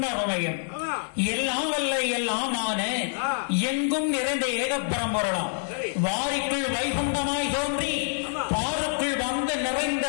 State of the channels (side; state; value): right; silent; digital silence